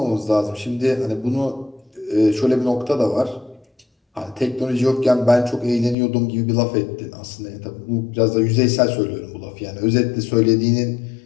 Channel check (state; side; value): drops out; right; at 6.0 s